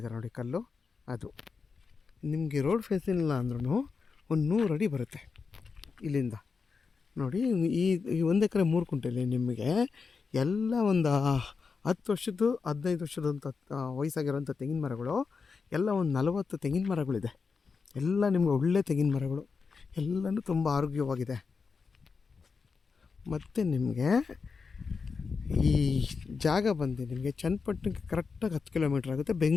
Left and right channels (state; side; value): quieter; right; 5.1 dB